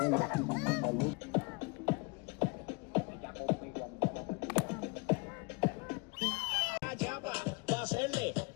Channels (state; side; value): quieter; right; 30.4 dB